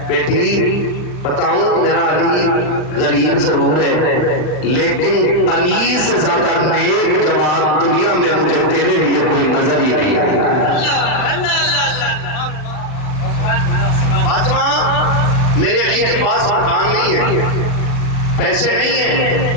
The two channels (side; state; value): right; late; 40 ms